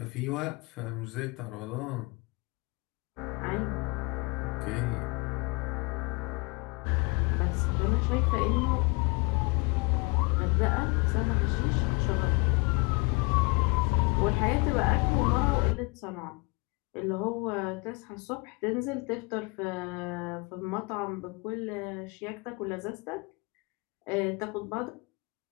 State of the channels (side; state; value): right; quieter; 28.5 dB